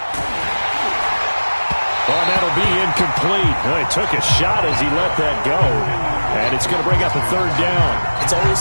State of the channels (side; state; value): both; inverted; correlation -1.00